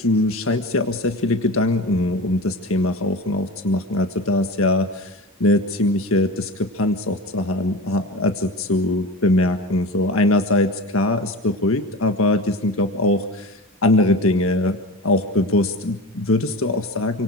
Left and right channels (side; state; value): both; normal; correlation 0.30